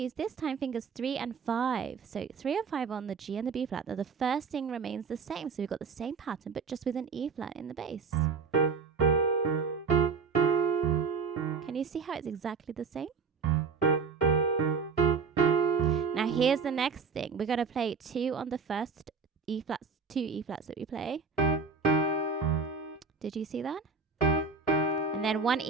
this time fingers 3 and 5. So 3 and 5 on the G and the B flat. Now the first thing remains the same. So we've got the same pattern, but just with an E flat in the bass. Can you see how it's exactly the same? Now here's the next thing. We're going to play 2 on the first E flats, 2 E flats that we play. Did you see that? And then 1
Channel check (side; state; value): left; quieter; 5.2 dB